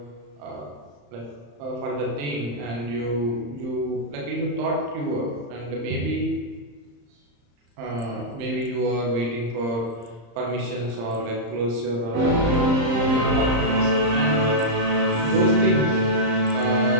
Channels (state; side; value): late; left; 35 ms